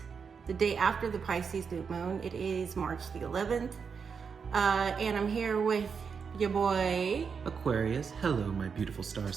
the day after the Pisces new moon. It is March the 11th. And I'm here with your boy Aquarius. Hello, my beautiful star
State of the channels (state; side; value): quieter; left; 6.0 dB